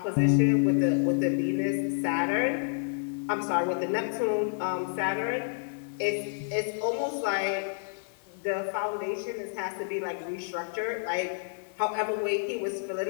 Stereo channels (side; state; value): right; silent; 58 dB below the other